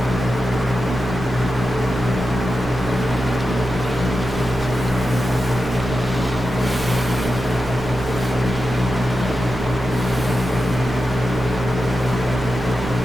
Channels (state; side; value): normal; both; correlation 0.90